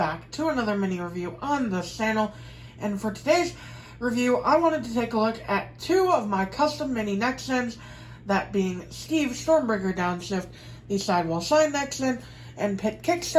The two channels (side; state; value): both; identical; correlation 1.00